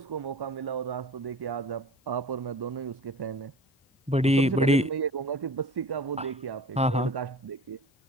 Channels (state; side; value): normal; both; correlation 0.41